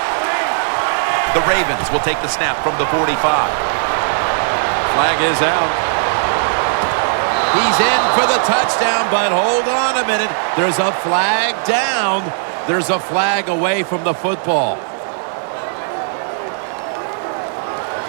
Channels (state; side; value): silent; left; digital silence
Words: The Ravens will take the snap from the 45. Flag is out. He's in for the touchdown, but hold on a minute. There's a flag down. There's a flag away from the football.